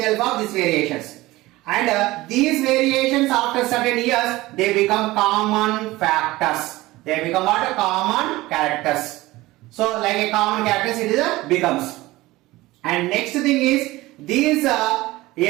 help of these variations. And these variations after certain years, they become common factors. They become what? Common characters. So like a common characters, it is a becomes. And next thing is these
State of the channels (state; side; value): quieter; left; 19.0 dB